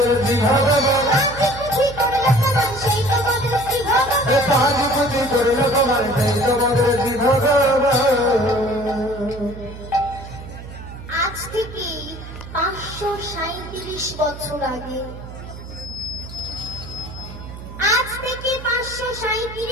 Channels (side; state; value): right; noise; hum, 13 dB below the sound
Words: শ্রী ভগবান হাজি পুত্রী করল ভগবান সেই তোমাদের শ্রী ভগবান। আজ থেকে 537 বছর আগে, আজ থেকে